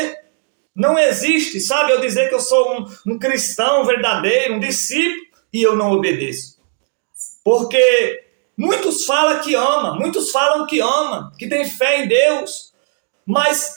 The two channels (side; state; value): left; silent; digital silence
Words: Não existe, sabe, eu dizer que eu sou um cristão verdadeiro, um discípulo, e eu não obedeço. Porque muitos falam que ama, que tem fé em Deus, mas